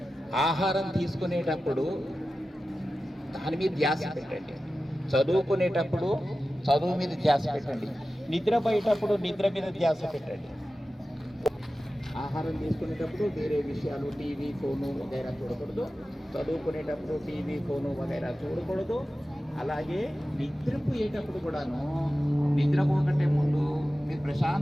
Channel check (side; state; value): both; normal; correlation 0.94